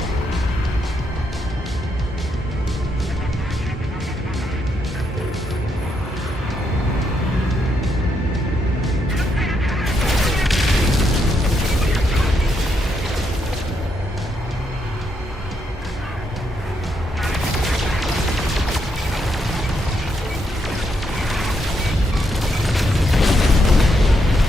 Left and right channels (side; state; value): both; normal; correlation 0.78